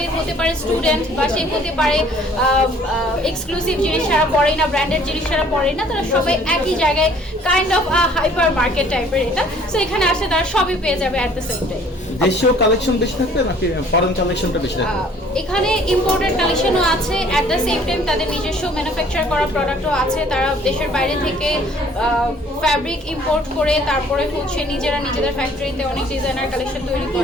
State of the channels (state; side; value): normal; both; correlation 0.56